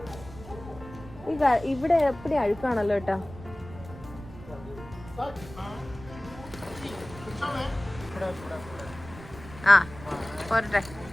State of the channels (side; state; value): right; noise; rumble, 16 dB below the sound